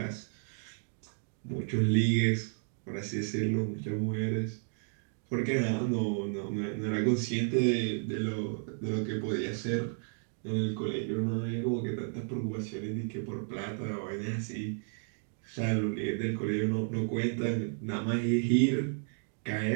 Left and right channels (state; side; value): silent; left; digital silence